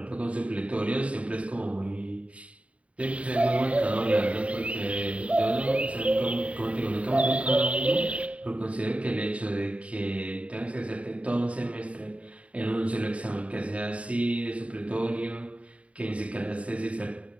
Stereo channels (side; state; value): left; late; 0.064 ms